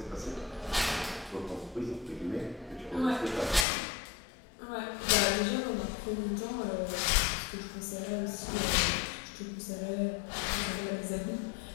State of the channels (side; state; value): right; drops out; at 3.7 s